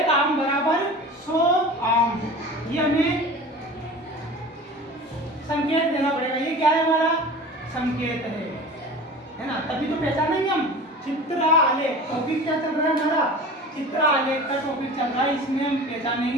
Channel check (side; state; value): both; normal; correlation 0.37